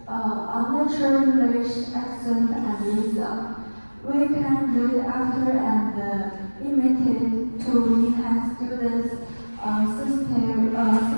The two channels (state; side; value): inverted; both; correlation -1.00